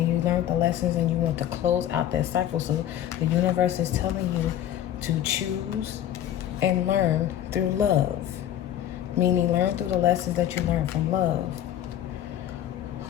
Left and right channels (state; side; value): quieter; right; 11.4 dB